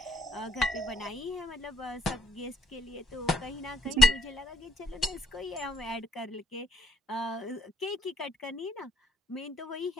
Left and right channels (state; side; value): normal; both; correlation 0.70